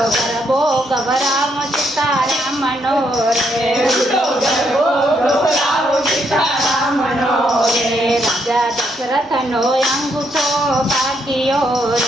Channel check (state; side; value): normal; both; correlation 0.75